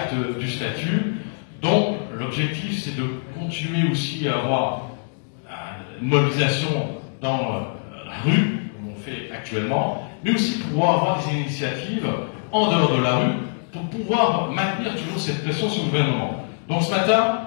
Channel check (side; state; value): right; silent; digital silence